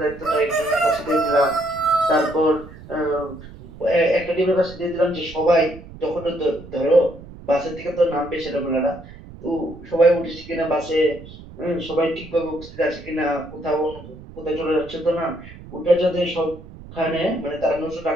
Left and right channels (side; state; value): right; noise; rumble, 17 dB below the sound